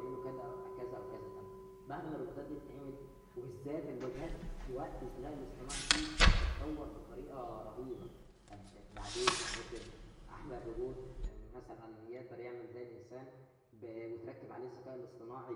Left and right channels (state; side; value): identical; both; correlation 1.00